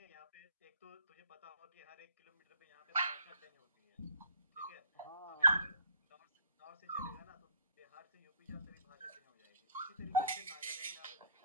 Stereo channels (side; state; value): both; inverted; correlation -0.56